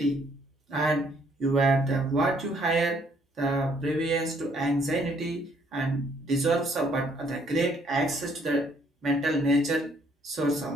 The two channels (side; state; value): both; normal; correlation 0.66